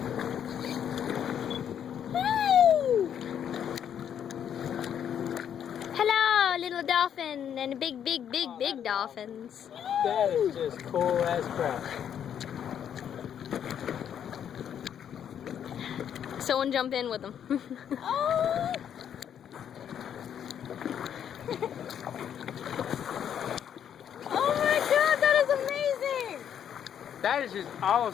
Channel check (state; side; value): quieter; right; 9.0 dB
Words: Hey! Hello, little dolphin and big dolphins. That is just cool as crap. Someone jump in with them. Oh! Oh my god, that is amazing! That is just